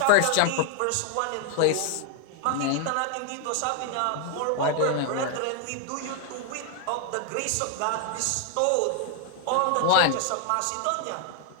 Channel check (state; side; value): different; both; correlation 0.00